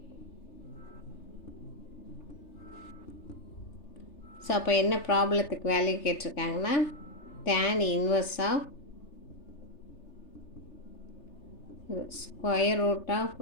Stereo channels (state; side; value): late; right; 3.3 ms